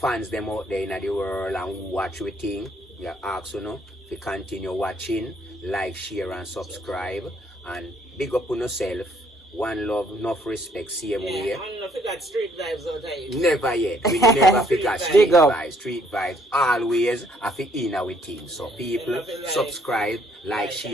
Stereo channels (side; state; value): both; normal; correlation 0.66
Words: them out there in the world and watch we thing, we ask you know, to continue watching, like, share and subscribe, and big up on yourself. one love, enough respect, same way. Yeah, I don't forget street vibes out here. Never yet. We never forget street vibes. Street vibes always have to in our team. So people subscribe, like,